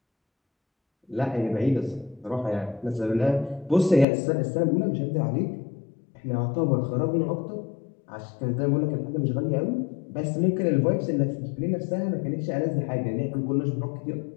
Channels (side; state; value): right; drops out; at 4.0 s